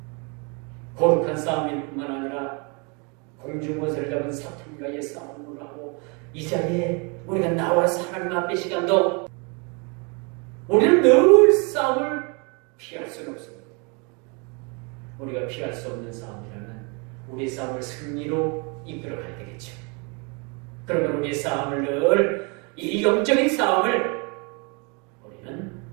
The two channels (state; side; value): quieter; left; 32.6 dB